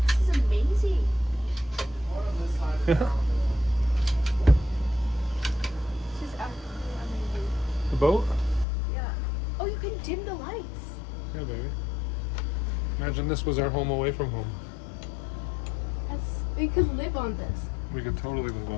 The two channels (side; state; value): right; drops out; at 8.7 s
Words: This is amazing. Yeah. This is absolutely amazing. The boat. Yeah. Oh, you can dim the lights. Yeah, baby. Imagine this was our home away from home. We could live on this. We could totally live